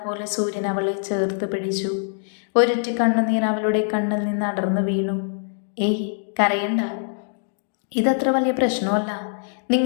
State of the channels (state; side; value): silent; right; digital silence